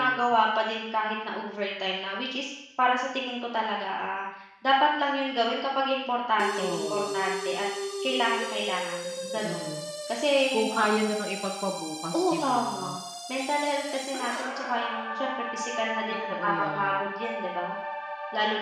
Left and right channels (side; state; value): both; identical; correlation 1.00